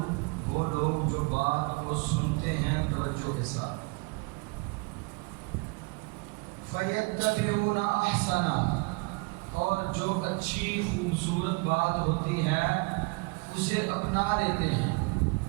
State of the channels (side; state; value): left; quieter; 28.8 dB